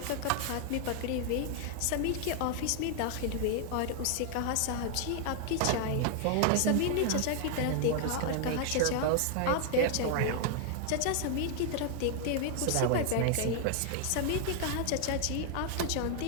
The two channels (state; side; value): different; both; correlation 0.00